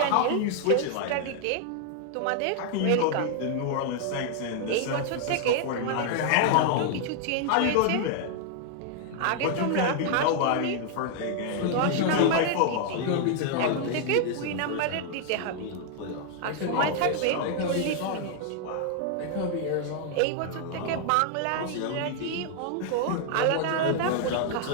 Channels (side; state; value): both; different; correlation 0.00